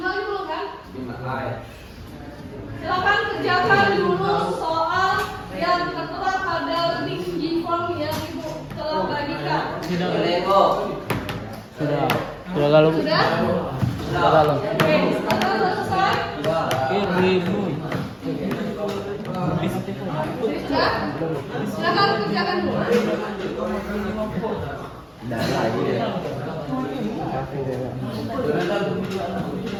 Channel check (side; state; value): both; identical; correlation 1.00